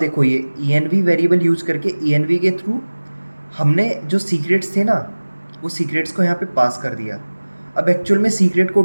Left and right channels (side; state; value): both; inverted; correlation -1.00